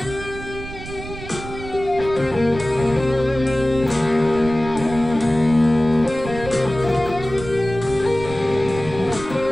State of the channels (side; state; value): right; noise; rumble, 12 dB below the sound